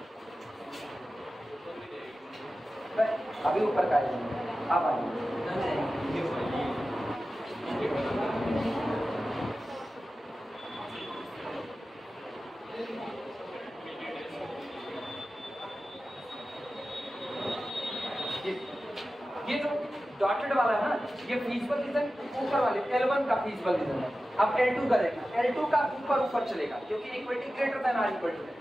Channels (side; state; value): both; normal; correlation 0.94